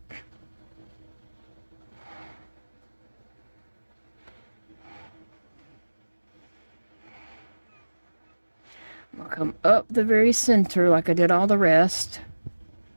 I'm gonna come up the very center like I did all the rest.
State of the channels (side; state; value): both; inverted; correlation -1.00